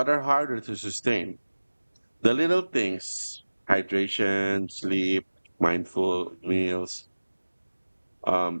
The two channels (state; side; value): inverted; both; correlation -1.00